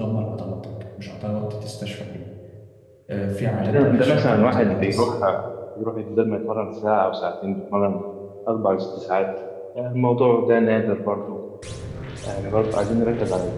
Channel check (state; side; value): identical; both; correlation 1.00